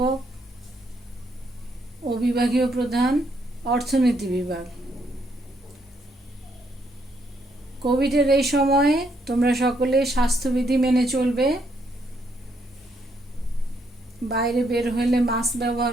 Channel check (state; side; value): normal; both; correlation 0.74